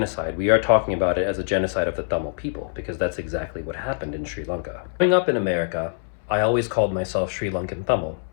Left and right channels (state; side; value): silent; right; 63 dB below the other